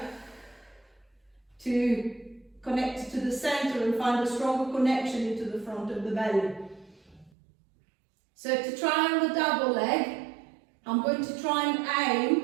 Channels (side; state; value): left; drops out; at 7.3 s